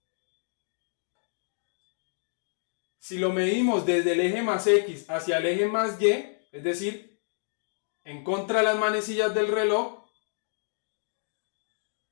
desde el eje más X hacia el eje más Y, es decir, en contra de las manecillas del reloj,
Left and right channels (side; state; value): right; silent; digital silence